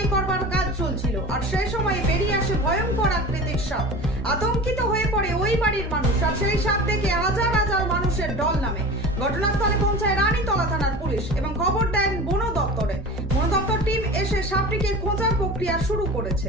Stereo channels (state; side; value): normal; both; correlation 0.35